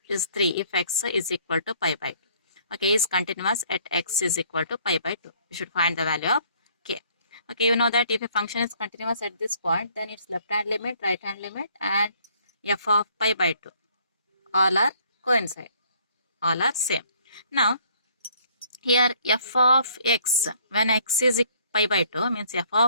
is 3 if x is equal to pi by 2. Okay, is continuous at x is equal to pi by 2. You should find the value of k. Okay, you know that if a function is continuous at this point, then its left hand limit, right hand limit and f of pi by 2 all are coincide, all are same. Now here f of x, when x is pi by 2 means f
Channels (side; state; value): both; inverted; correlation -0.61